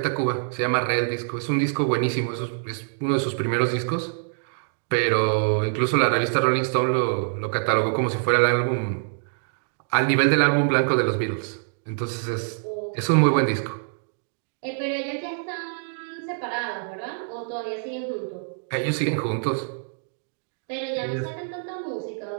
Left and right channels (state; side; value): silent; left; digital silence